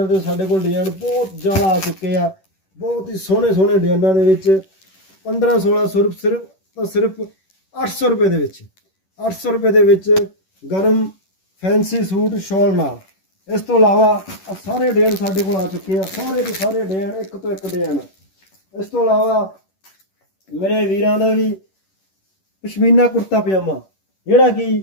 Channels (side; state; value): right; late; 11 ms